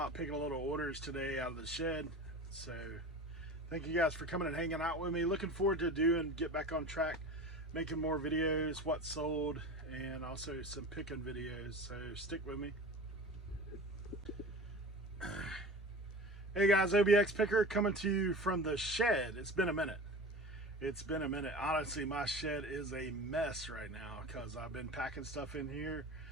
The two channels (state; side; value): normal; both; correlation 0.34